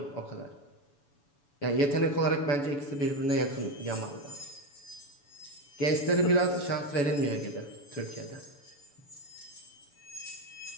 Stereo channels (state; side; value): late; right; 7.0 ms